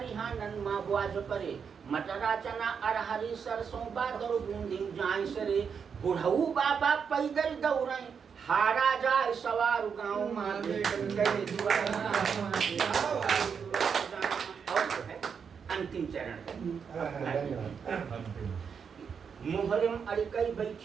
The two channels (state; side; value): quieter; left; 6.6 dB